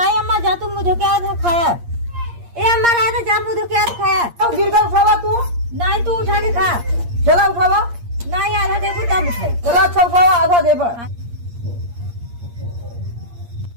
अम्मा जा तुम मुझे क्या आधा खाया ए अम्मा रहा था जा मुझे क्या आधा खाया अब गिर गया उठावा तू। नहीं तू उठा के खा चला उठावा। नहीं आधा देखो तब उठाई चला अच्छा उठावा आधा दे पर।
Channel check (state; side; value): late; left; 8.6 ms